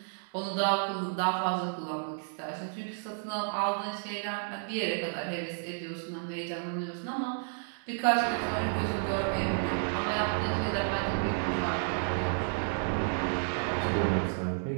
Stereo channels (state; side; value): silent; left; 57 dB below the other